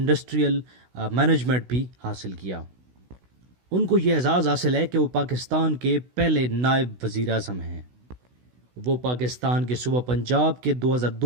management بھی حاصل کیا۔ ان کو یہ اعزاز حاصل ہے کہ وہ پاکستان کے پہلے نائب وزیر اعظم ہیں۔ وہ پاکستان کے صوبہ پنجاب کے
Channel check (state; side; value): late; left; 16 ms